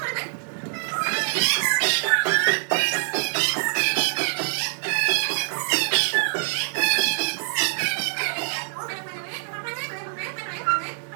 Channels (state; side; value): silent; left; digital silence